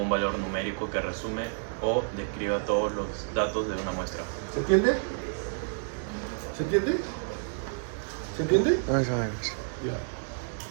valor numérico que resume o describa todos los datos de una muestra. ¿Se entiende? ¿Se entiende? ¿Se entiende? Más o menos.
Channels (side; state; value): left; silent; digital silence